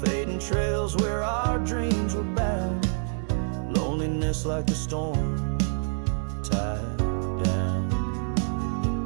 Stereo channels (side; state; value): left; silent; 60 dB below the other